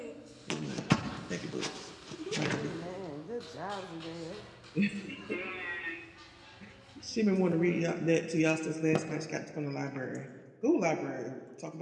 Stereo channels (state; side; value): identical; both; correlation 1.00